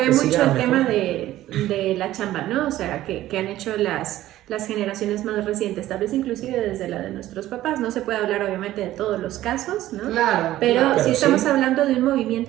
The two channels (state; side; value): quieter; left; 14.5 dB